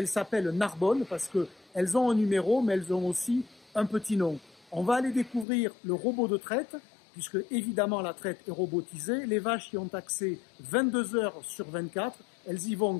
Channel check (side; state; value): right; drops out; at 5.5 s